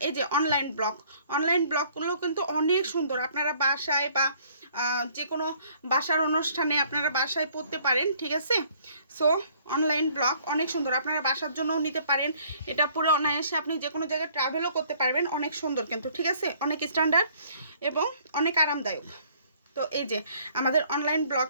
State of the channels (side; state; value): both; inverted; correlation -0.60